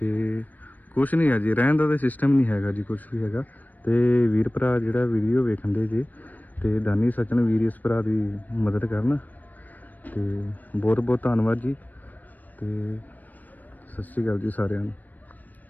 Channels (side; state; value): right; late; 0.083 ms